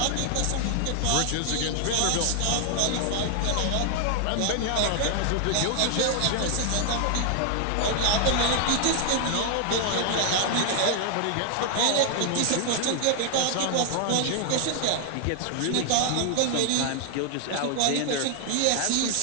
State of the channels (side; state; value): both; different; correlation 0.00